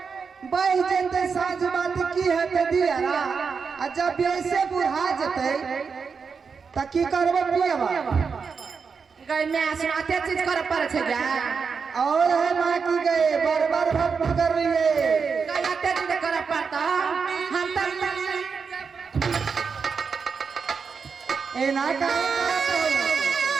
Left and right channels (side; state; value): left; quieter; 5.6 dB